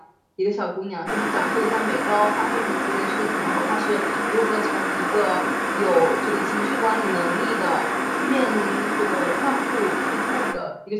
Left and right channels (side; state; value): both; identical; correlation 1.00